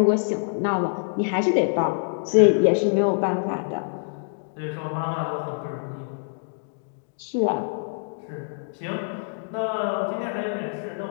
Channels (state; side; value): silent; right; digital silence